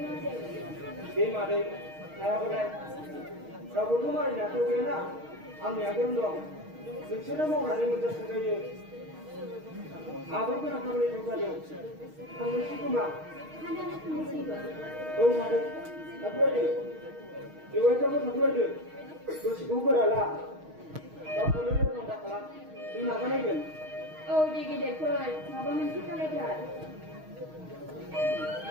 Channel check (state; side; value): late; left; 6.4 ms